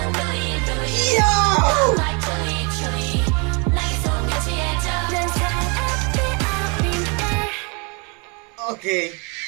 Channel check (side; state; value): left; quieter; 32.2 dB